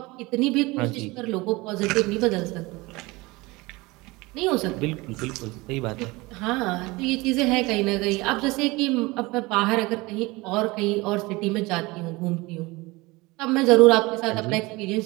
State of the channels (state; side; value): quieter; left; 22.7 dB